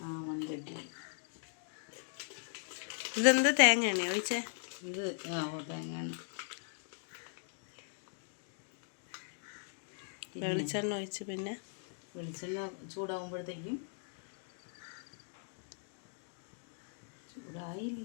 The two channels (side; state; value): right; silent; digital silence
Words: മൺചട്ടി. ഇതെന്ത് തേങ്ങ ഒഴിച്ചേ? ഇത് തേങ്ങയാണ്. വെളിച്ചെണ്ണ ഒഴിച്ച് പിന്നെ വെളിച്ചെണ്ണ ചൂടാകുമ്പോഴത്തേക്കും ചൂടായി